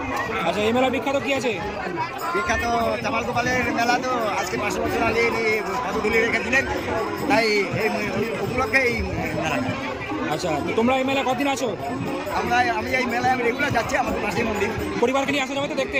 আচ্ছা, এই মেলা বিখ্যাত কি আছে? বিখ্যাত চামাল গোপালের মেলা, তো আজকে 500 বছর আগে ইনি পদধূলি রেখেছিলেন, তাই এই উপলক্ষে এই মেলা। আচ্ছা, তো তোমরা এই মেলা কতদিন আছো? আমি এই মেলায় রেগুলার যাচ্ছি, আমাদের পাশেই মন্দির। পরিবারকে নিয়ে আসা যাবে তো দেখতে?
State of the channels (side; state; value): left; noise; rumble, 26 dB below the sound